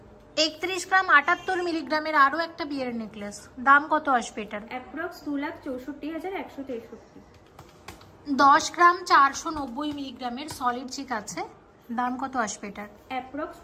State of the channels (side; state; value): both; identical; correlation 1.00